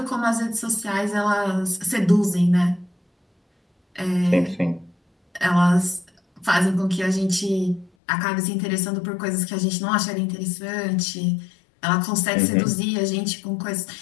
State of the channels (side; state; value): right; drops out; at 7.9 s